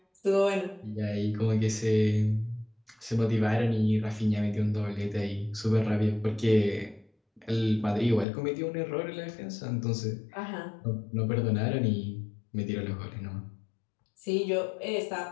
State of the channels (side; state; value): right; drops out; at 8.2 s